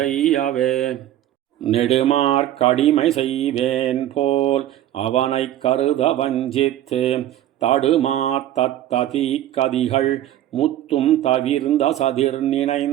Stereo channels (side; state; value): left; quieter; 12.7 dB